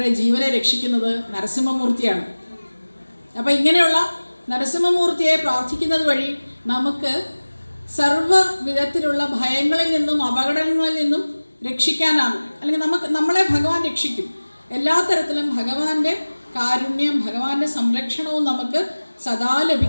ജീവനെ രക്ഷിക്കുന്നത് നരസിംഹമൂർത്തിയാണ്. അപ്പം ഇങ്ങനെയുള്ള നരസിംഹമൂർത്തിയെ പ്രാർത്ഥിക്കുന്നത് വഴി നമുക്ക് സർവ്വ വിധത്തിലുള്ള ഭയങ്ങളിൽ നിന്നും അപകടങ്ങളിൽ നിന്നും രക്ഷിക്കാനാകും. അല്ലെങ്കിൽ നമ്മളെ ഭഗവാൻ രക്ഷിക്കും. എല്ലാ തരത്തിലും ഭഗവാന്റെ കാരുണ്യം, ഭഗവാന്റെ സംരക്ഷണവും നമുക്ക് സദാ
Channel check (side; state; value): both; inverted; correlation -1.00